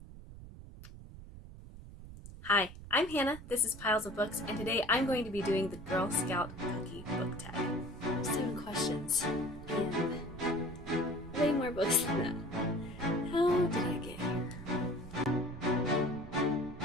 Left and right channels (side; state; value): right; noise; rumble, 14 dB below the sound